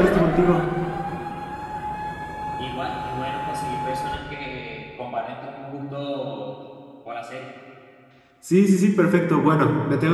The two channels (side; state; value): both; identical; correlation 1.00